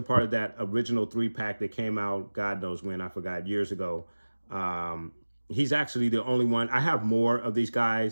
part of that original 3-pack that came out, God knows when, I forgot, years ago. He's actually the only one. I have more of these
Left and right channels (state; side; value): inverted; both; correlation -1.00